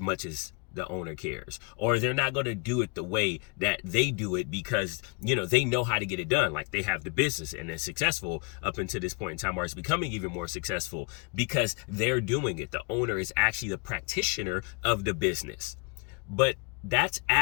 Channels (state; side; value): quieter; right; 31.3 dB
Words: as the owner cares, or they're not going to do it the way that they do it because they know how to get it done. Like, they have the business and they're successful up until this point in time, or it's becoming even more successful because they're doing it. The owner is actually the practitioner of the business. But that's